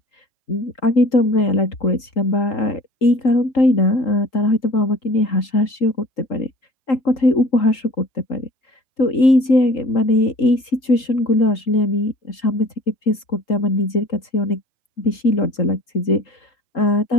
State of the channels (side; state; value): right; late; 3.8 ms